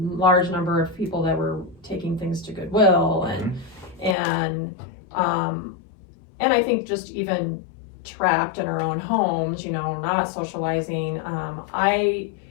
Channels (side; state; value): right; drops out; at 4.2 s